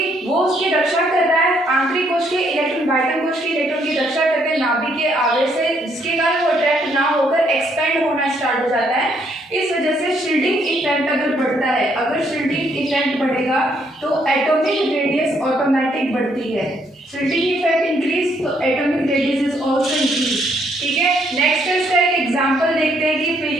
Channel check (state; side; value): normal; both; correlation 0.70